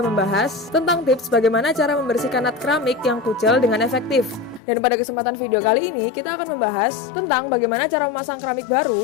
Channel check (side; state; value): right; drops out; at 4.6 s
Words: membahas tentang tips bagaimana cara membersihkan nut keramik yang kucel dengan efektif. Dan pada kesempatan video kali ini kita akan membahas tentang bagaimana cara memasang keramik baru